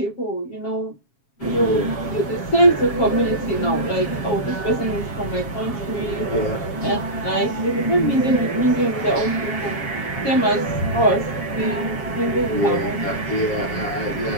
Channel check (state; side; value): late; right; 7.3 ms